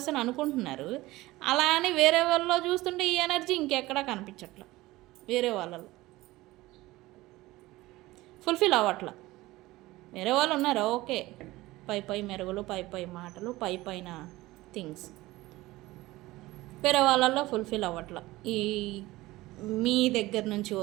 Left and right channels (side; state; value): left; quieter; 18.6 dB